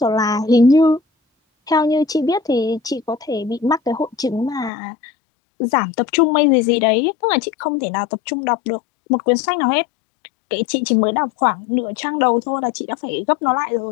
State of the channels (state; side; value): drops out; right; at 4.7 s